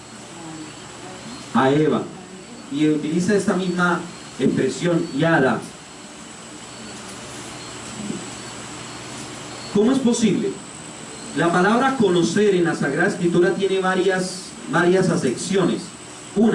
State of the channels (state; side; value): identical; both; correlation 1.00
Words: a Eva, y utiliza esta misma expresión, Yada. ¿Cómo es posible? La palabra conocer en la Sagrada Escritura tiene varias acepciones.